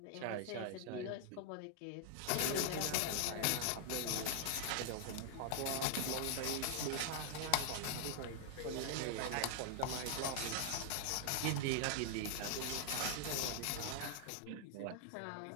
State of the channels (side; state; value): both; different; correlation 0.00